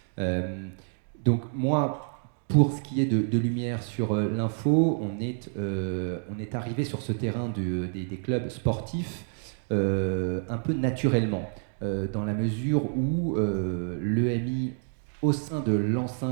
Donc moi, pour ce qui est de lumière sur l'info, on est arrivé sur ce terrain des clubs sportifs un peu naturellement, dans la mesure où l'EMI, au sein de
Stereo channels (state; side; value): silent; left; 59 dB below the other